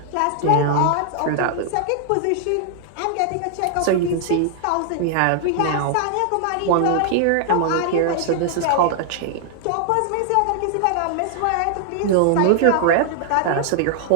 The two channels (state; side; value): different; both; correlation 0.00